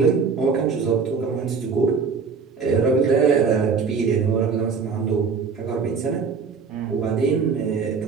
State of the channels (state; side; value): quieter; left; 5.4 dB